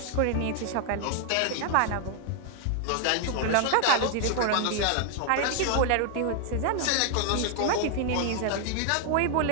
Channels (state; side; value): different; both; correlation 0.00